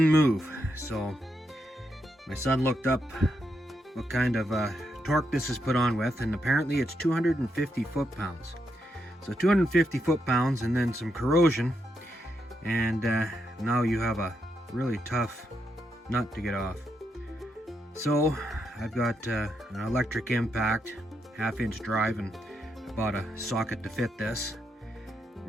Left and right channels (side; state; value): both; normal; correlation 0.81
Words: move. So my son looked up what kind of torque this is put on with, and apparently it's 250 foot-pounds. So 250 foot-pounds and then some corrosion, and now you have a really tough nut to get off. So I've got an electric impact, 1/2-inch drive, and I bought a socket to fit this.